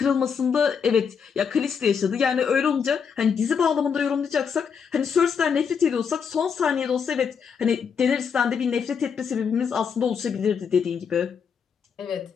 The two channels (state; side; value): quieter; right; 6.6 dB